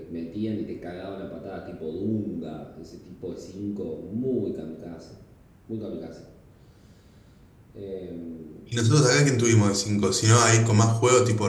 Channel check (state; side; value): identical; both; correlation 1.00